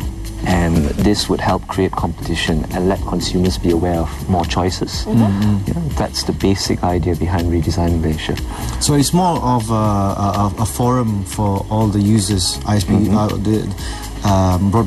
and this would help create competition and let consumers be aware of more choices. Yeah, that's the basic idea behind Redesign Malaysia. So it's more of a forum for all the users, ISP,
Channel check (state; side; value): identical; both; correlation 1.00